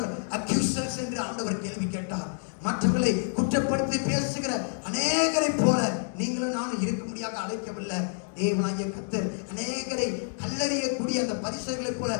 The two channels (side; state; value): right; silent; digital silence